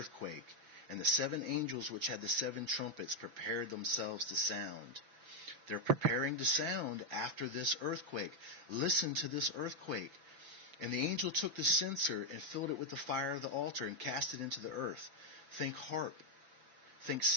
And the seven angels which had the seven trumpets prepared themselves to sound. They're preparing to sound after this earthquake. Listen to this earthquake. And the angel took the censer and filled it with the fire of the altar and cast it into the earth. Think harp. Think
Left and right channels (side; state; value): left; late; 6.0 ms